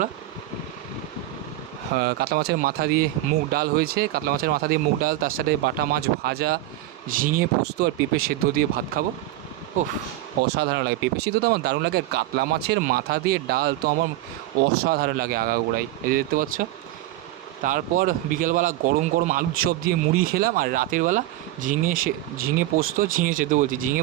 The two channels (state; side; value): quieter; left; 15.1 dB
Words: কাতলা মাছের মাথা দিয়ে মুগ ডাল হয়েছে। কাতলা মাছের মাথা দিয়ে মুগ ডাল, তার সাথে বাটা মাছ ভাজা, ঝিঙে পোস্ত আর পেঁপে সেদ্ধ দিয়ে ভাত খাবো। ওহ, অসাধারণ লাগে। পেঁপে সিদ্ধ তো আমার দারুণ লাগে, আর কাতলা মাছের মাথা দিয়ে ডাল তো আমার অসাধারণ লাগে আগাগোড়াই। এই যে দেখতে পাচ্ছ। তারপর বিকেলবেলা গরম গরম আলুর চপ দিয়ে মুড়ি খেলাম, আর রাতের বেলা ঝিঙে পোস্ত, ঝিঙে সেদ্ধ বলছি, ঝিঙে